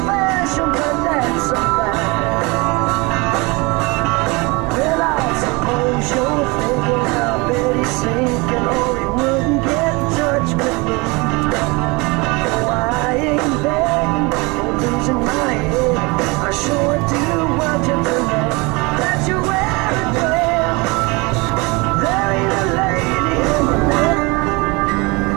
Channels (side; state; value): left; quieter; 26.3 dB